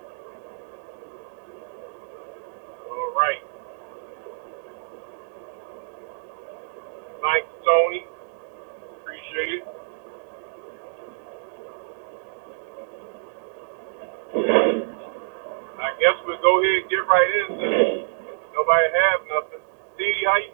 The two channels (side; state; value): left; silent; digital silence